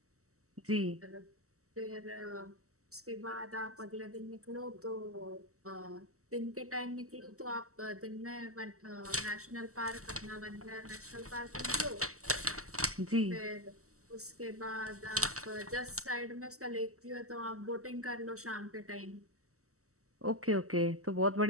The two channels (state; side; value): late; left; 0.64 ms